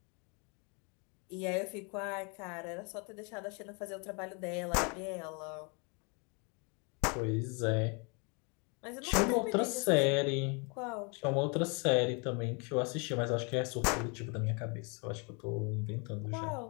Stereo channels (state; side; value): quieter; right; 33.6 dB